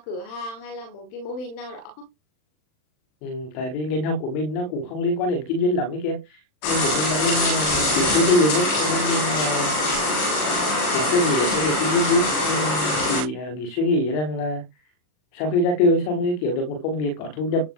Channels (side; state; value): right; late; 39 ms